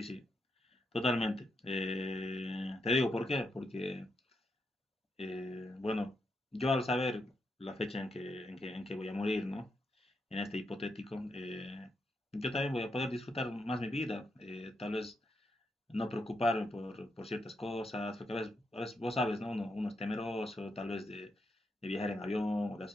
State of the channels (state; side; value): normal; both; correlation 0.82